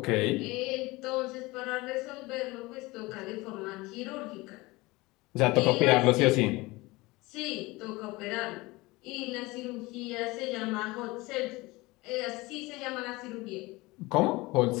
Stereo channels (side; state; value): right; quieter; 22.0 dB